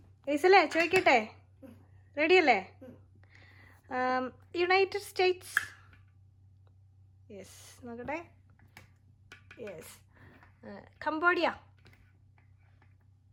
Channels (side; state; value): both; identical; correlation 1.00